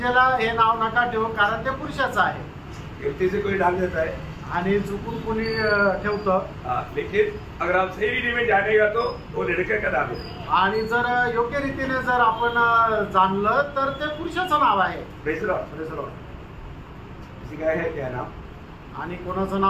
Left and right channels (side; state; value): both; identical; correlation 1.00